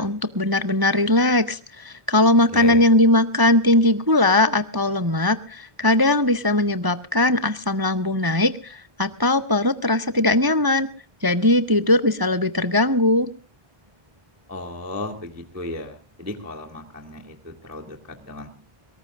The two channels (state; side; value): late; left; 1.0 ms